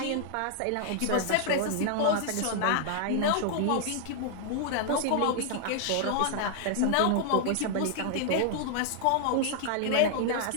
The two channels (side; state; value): both; different; correlation 0.00